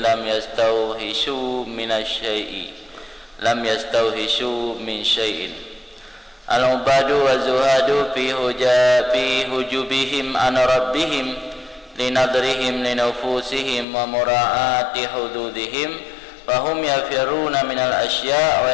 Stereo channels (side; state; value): right; drops out; at 13.9 s